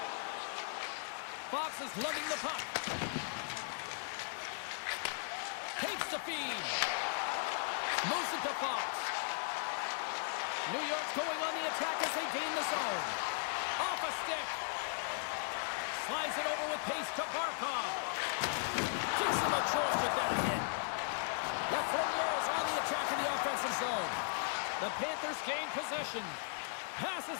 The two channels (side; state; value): right; silent; 53 dB below the other